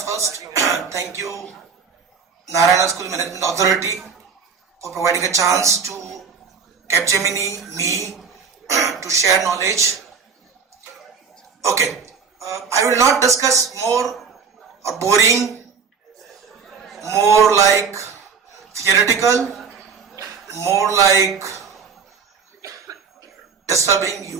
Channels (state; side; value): quieter; left; 5.9 dB